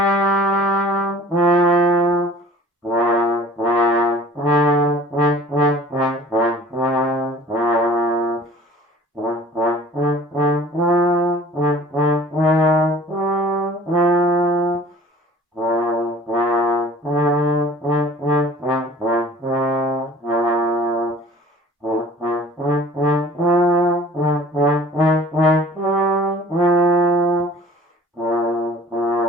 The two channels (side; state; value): both; normal; correlation 0.47